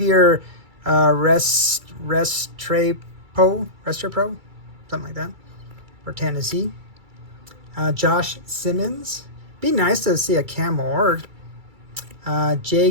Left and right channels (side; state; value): left; late; 2.3 ms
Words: Restrepo. Something like that. For Tennessee. Josh Simmons. Be nice to see a Cam Ward.